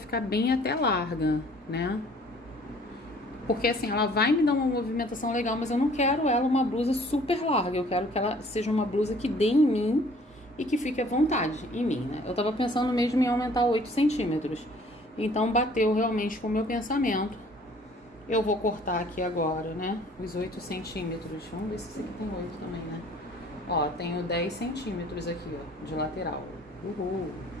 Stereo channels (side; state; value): both; normal; correlation 0.55